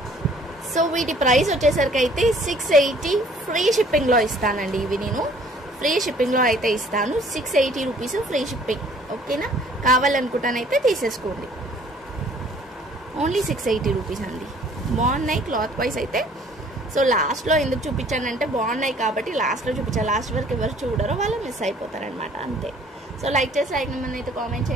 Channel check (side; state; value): both; normal; correlation 0.56